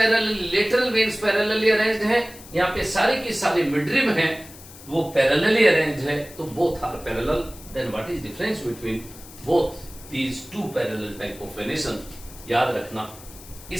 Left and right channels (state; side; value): noise; left; hiss, 18 dB below the sound